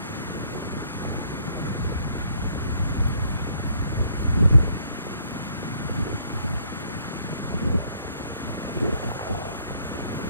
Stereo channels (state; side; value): inverted; both; correlation -0.64